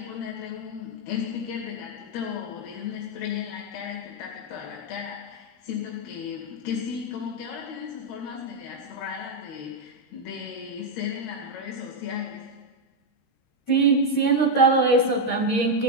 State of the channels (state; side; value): late; right; 13 ms